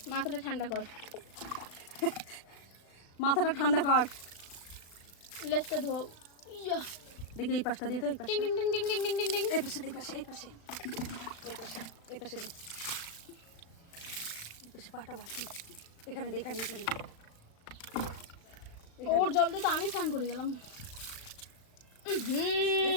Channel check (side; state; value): right; late; 36 ms